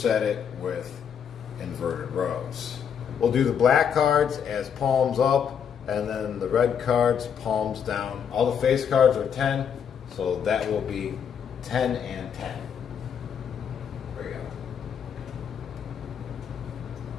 it with inverted rows. We'll do the black cards as palms up, and then the red cards palms down. All the face cards are 10, so that will be 10 and 10. There we go.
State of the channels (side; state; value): right; quieter; 7.7 dB